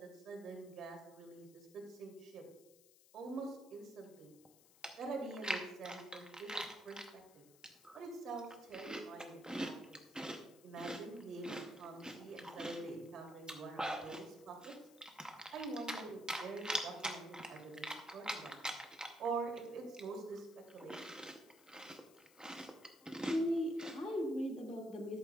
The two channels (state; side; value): noise; left; hiss, 23 dB below the sound